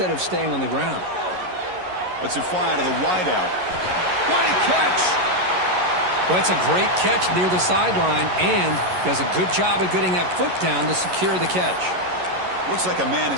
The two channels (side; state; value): left; late; 11 ms